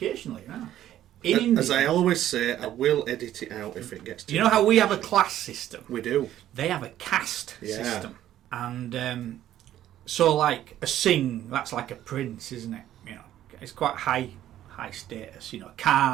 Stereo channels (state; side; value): quieter; left; 12.4 dB